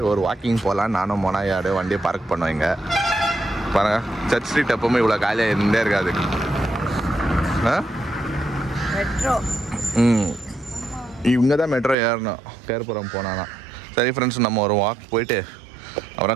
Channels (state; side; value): drops out; left; at 12.0 s